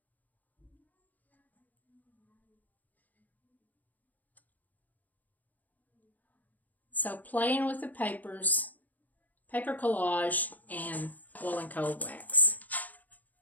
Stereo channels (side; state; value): right; late; 0.081 ms